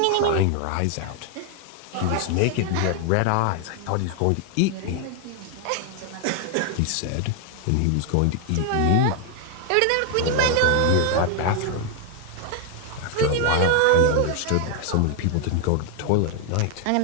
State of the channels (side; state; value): both; different; correlation 0.00